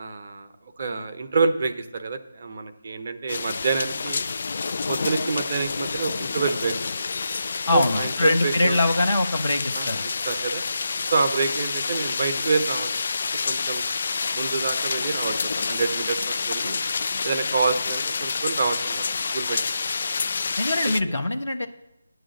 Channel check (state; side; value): inverted; both; correlation -0.84